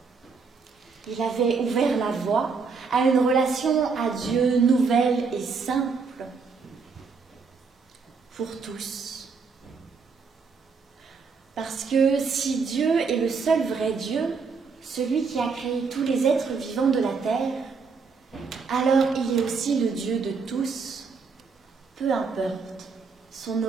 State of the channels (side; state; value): left; quieter; 5.0 dB